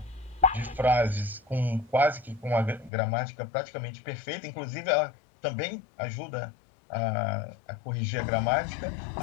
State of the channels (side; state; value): right; drops out; at 2.9 s